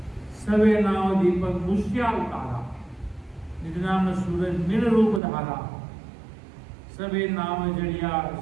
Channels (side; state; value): left; drops out; at 5.2 s